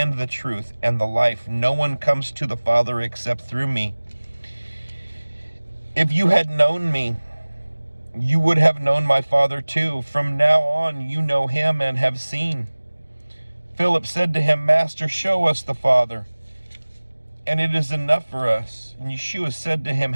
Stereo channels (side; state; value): both; inverted; correlation -1.00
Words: the truth and the life. No one comes to the Father except through me. If you had known me, you would have known my Father too. From now on, you know him and have seen. Philip said to him, Master, show us the Father, and it is enough for us. And Yeshua said to him,